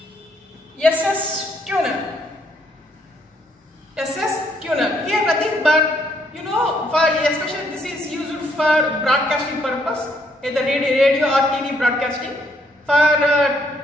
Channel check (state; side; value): normal; both; correlation 0.70